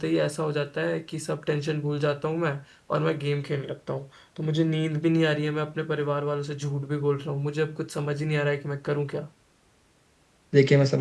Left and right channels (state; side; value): identical; both; correlation 1.00